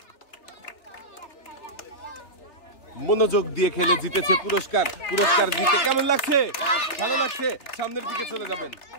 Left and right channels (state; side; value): late; right; 3.4 ms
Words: মনোযোগ দিয়ে খেলে জিতেছে পুরস্কার। পুরস্কার জিতে কেমন লাগছে? ভালো লাগছে। সামনের দিকে চলে যাবেন,